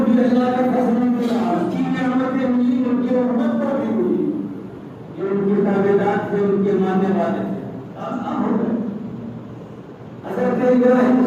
بھی اللہ کا فضل ملا اس کی نعمتیں ملی ان کی امت کو بھی ملی جو ان کے تابعدار تھے ان کے ماننے والے تھے آسان ہو گئے حضرت ابراہیم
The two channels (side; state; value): both; identical; correlation 1.00